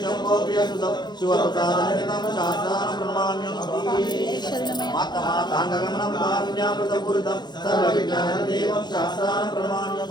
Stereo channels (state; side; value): late; right; 0.21 ms